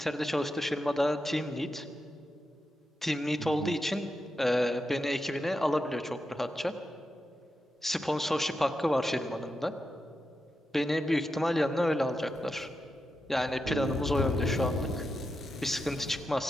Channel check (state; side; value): normal; both; correlation 0.88